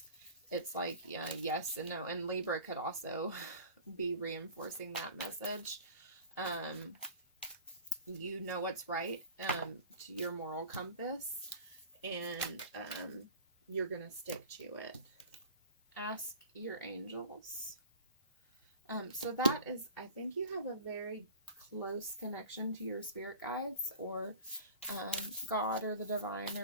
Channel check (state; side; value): inverted; both; correlation -0.42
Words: it's like, yes and no. And Libra could also be reinforcing that message. You know what's right, to your moral compass, and you're gonna stick to it. Ask your angels. So that is, I think you have a very close connection to your spirit guides, or God, or the divine,